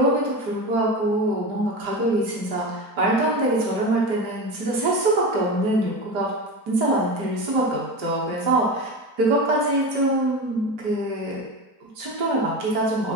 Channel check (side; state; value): left; late; 4.5 ms